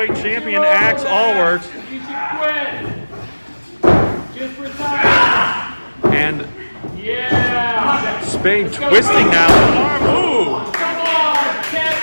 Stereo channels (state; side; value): inverted; both; correlation -1.00